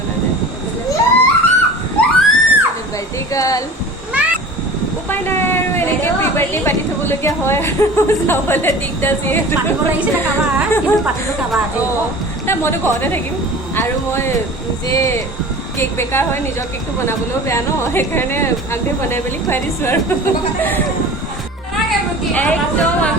নাই বাৰ্থডে গাৰ্ল উপায় নাই আৰু এনেকে প্ৰি বাৰ্থডে পাতি থবলগীয়া হয় আৰু চাবলৈ দিগদাৰ যিহেতু নাই মইতো ঘৰতে থাকিম আৰু মই নিজে কেক বেকাৰ হয় নিজৰ কেকটো বনাবলৈও বেয়া ন সেইকাৰণে আগে বনাই মেলি খুৱাই দিছোঁ আৰু একদম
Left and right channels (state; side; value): normal; both; correlation 0.39